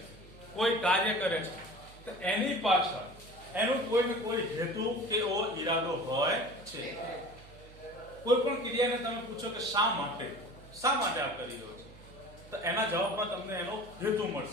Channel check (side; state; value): right; noise; hum, 20 dB below the sound